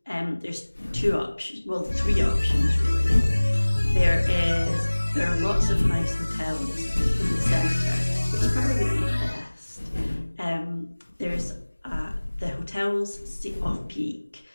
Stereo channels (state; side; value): inverted; both; correlation -1.00